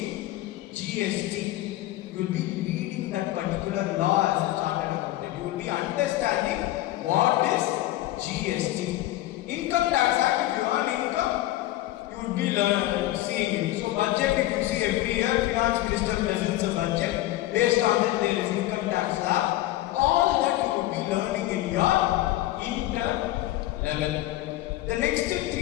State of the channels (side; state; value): right; quieter; 15.9 dB